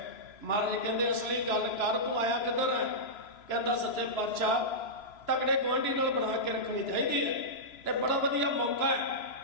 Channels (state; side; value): late; right; 3.0 ms